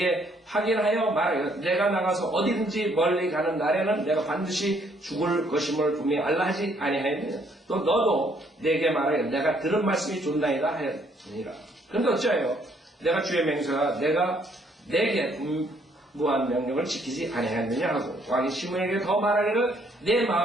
확인하여 말하여 내가 나가서 어디든지 멀리 가는 날에는 내가 반드시 죽을 것임을 분명히 알라 하지 아니하였느냐. 또 너도 내게 말하여 내가 들은 말씀이 좋나이다 하였느니라. 그런데 어찌하여 내가 주의 맹세가 내가 내게 무한 명령을 지키지 아니하였느냐 하고 왕이 시므이에게 더 말하기를 내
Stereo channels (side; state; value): both; normal; correlation 0.67